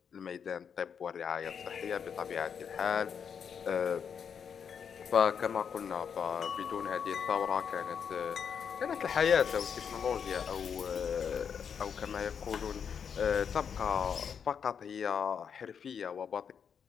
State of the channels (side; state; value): right; quieter; 7.2 dB